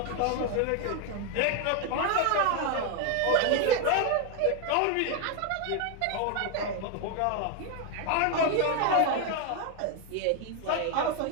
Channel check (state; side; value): different; both; correlation 0.01